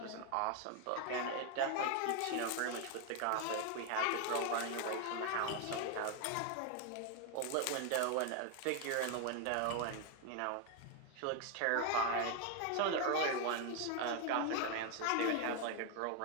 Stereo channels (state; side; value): different; both; correlation 0.01